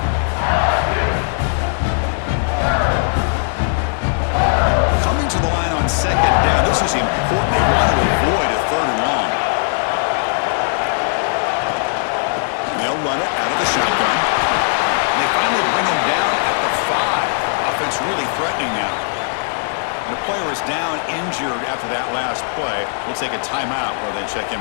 Coming to the line on 2nd down. This is important. They want to avoid a 3rd and long. They'll run it out of the shotgun. And they finally bring him down at the 5. Offense really threatening now. And the player is down injured after that last play. We'll take a timeout while they check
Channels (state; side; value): silent; right; digital silence